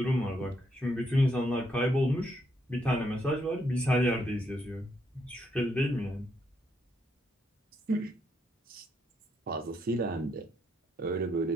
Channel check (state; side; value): normal; both; correlation 0.76